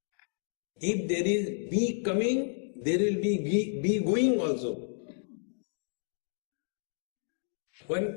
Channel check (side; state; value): right; silent; digital silence